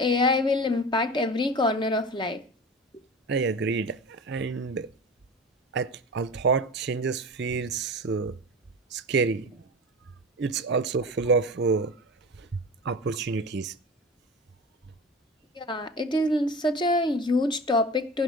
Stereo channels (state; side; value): normal; both; correlation 0.32